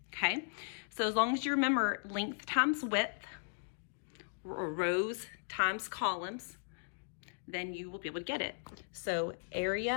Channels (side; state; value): right; silent; digital silence